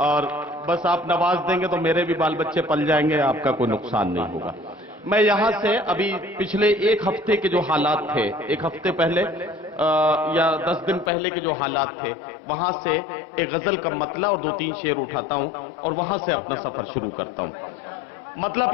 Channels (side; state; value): right; drops out; at 11.1 s